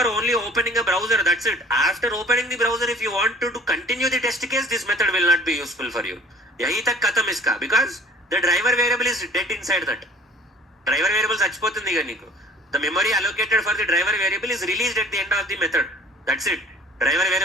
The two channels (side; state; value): both; normal; correlation 0.50